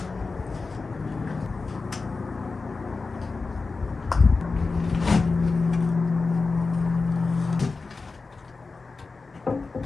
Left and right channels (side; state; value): right; quieter; 4.1 dB